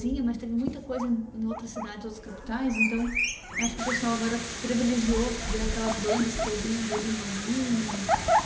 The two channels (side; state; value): both; identical; correlation 1.00